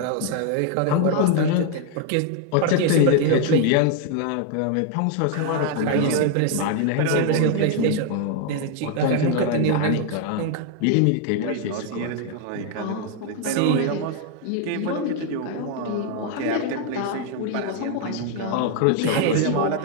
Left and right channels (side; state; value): both; different; correlation 0.01